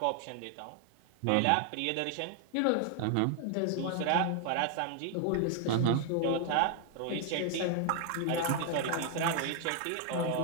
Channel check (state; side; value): different; both; correlation 0.00